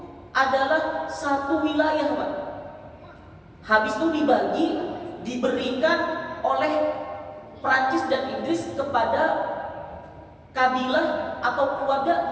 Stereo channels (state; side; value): identical; both; correlation 1.00